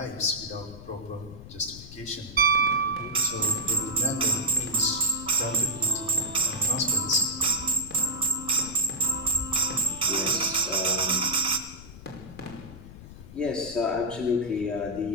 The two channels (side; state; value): left; noise; rumble, 16 dB below the sound